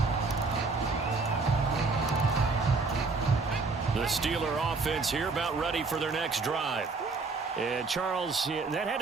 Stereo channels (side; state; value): left; quieter; 4.1 dB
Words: The Steeler offense here about ready for their next drive. And Charles, that had